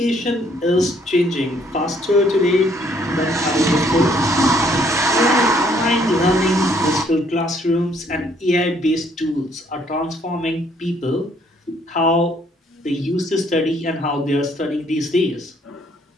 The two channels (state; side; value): normal; both; correlation 0.65